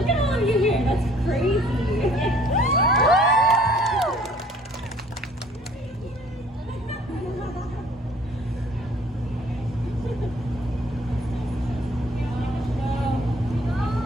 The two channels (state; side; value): normal; both; correlation 0.56